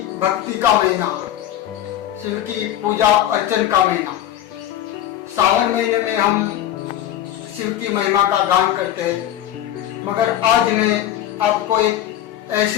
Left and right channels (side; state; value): right; quieter; 12.0 dB